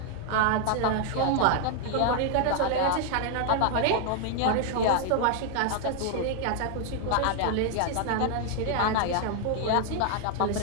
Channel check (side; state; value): both; different; correlation 0.00